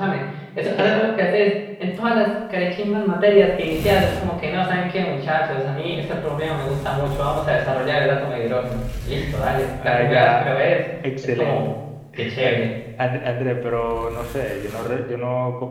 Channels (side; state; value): both; identical; correlation 1.00